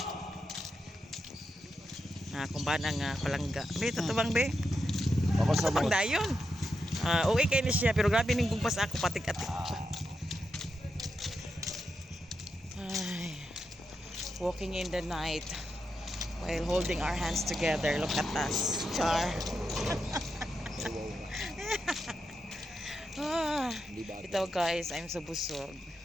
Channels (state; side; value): normal; both; correlation 0.86